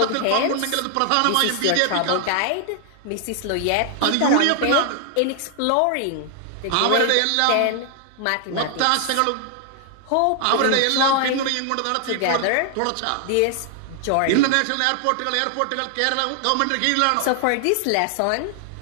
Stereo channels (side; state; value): both; different; correlation 0.00